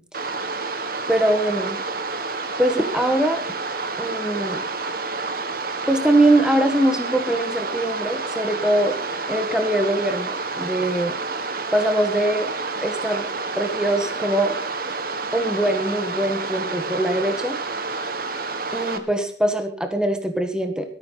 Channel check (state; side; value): normal; both; correlation 0.57